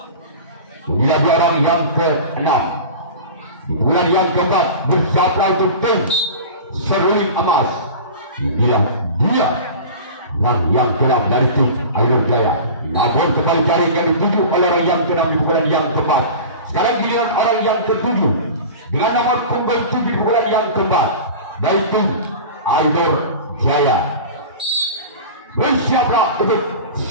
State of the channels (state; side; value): inverted; both; correlation -0.34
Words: Tidak di orang yang keenam di bulan yang keempat bersiaplah untuk tim Seruling Emas. Inilah dia yang keenam dari tim Ainur Jaya. Namun kembali jaring yang dituju oleh orang yang keenam di bulan yang keempat. Sekarang giliran orang yang ketujuh dengan nomor punggung 7 di bulan yang keempat dari tim Ainur Jaya. Bersiaplah untuk